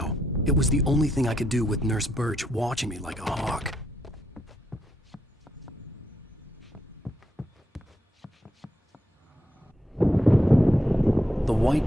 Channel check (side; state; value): both; normal; correlation 0.79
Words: It was the only thing I could do with Nurse Birch watching me like a hawk. The white